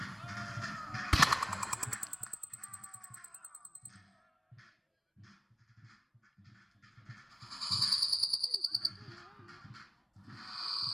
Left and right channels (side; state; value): both; identical; correlation 1.00